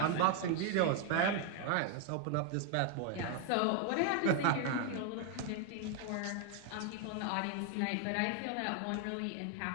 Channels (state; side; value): different; both; correlation 0.01